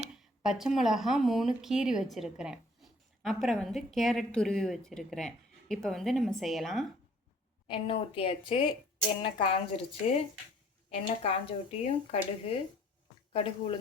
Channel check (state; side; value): normal; both; correlation 0.58